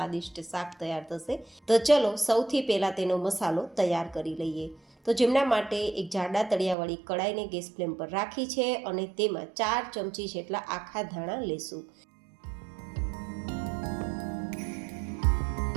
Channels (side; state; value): left; drops out; at 6.8 s